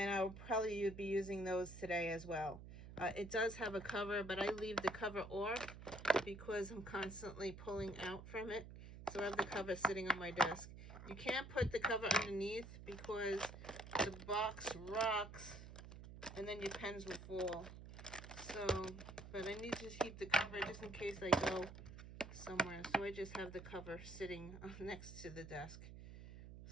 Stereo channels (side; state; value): right; noise; hum, 13 dB below the sound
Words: I'll probably be using those today as well. It does have a cover, but I leave the cover off because I'm constantly pulling out from it. So I have the cover sitting on my desk. You can't put the cover underneath because the box rocks and then your pens will fall. So, but I need to keep the cover just in case I go somewhere. So I just have the cover sitting next to the desk.